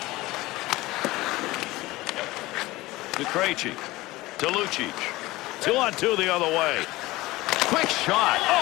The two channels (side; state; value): right; quieter; 19.2 dB